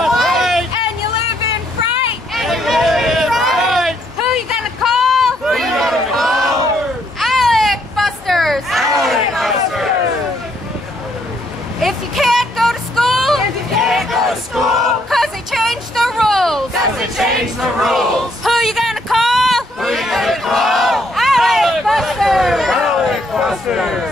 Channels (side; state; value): both; normal; correlation 0.71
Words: change the rules. Who you gonna call? Who you gonna call? ALEC Busters! ALEC